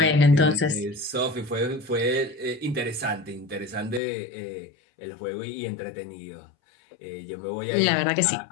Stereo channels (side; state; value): right; drops out; at 4.0 s